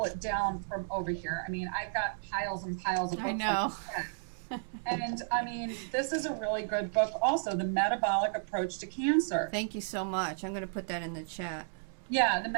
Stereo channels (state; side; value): silent; left; digital silence